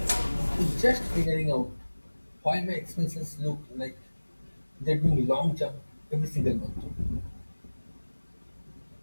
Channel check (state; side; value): inverted; both; correlation -1.00